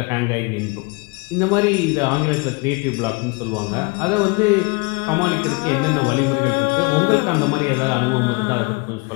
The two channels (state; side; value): quieter; right; 28.7 dB